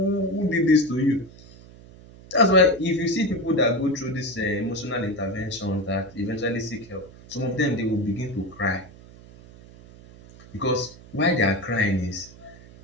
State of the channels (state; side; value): noise; right; hum, 21 dB below the sound